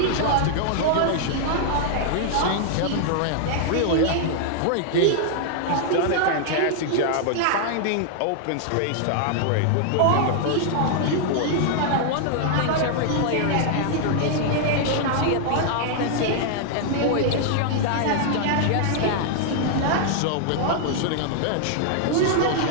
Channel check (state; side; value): different; both; correlation 0.00